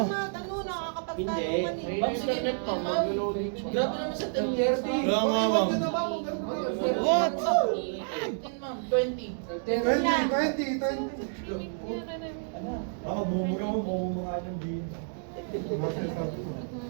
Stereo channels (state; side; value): silent; left; digital silence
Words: nakakapagtanungan eh. Ma'am, sige, ma'am. Grabe naman sa 10:30. Kaya nga, ma'am. What? 15, ma'am. 20. 20. Baka bumuga mo, bumuga ng din.